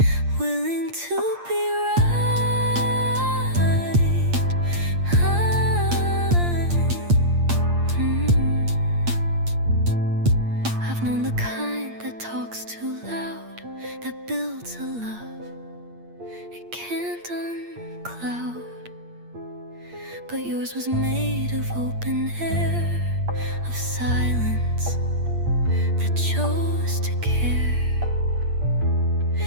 willing to be right. I've known the kind that talks too loud, that builds a love it can't uncloud. But yours was made of open air, of silence that chose to care.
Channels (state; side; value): late; left; 8.6 ms